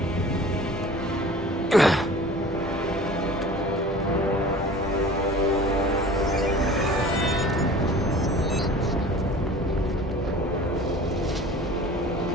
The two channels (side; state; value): both; normal; correlation 0.43